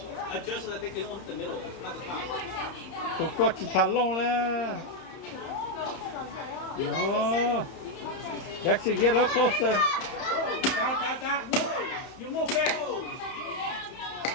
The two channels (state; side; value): late; right; 31 ms